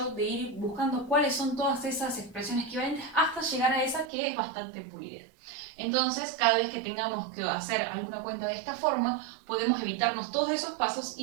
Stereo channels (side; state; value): left; drops out; at 4.1 s